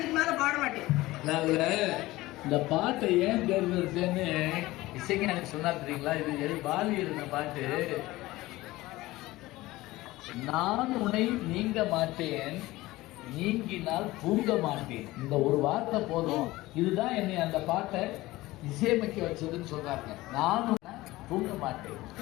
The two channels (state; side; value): quieter; right; 18.6 dB